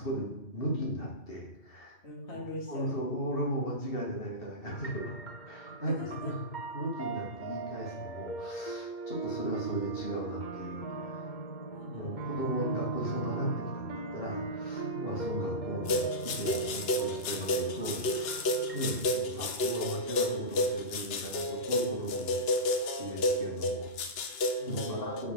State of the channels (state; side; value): late; right; 2.9 ms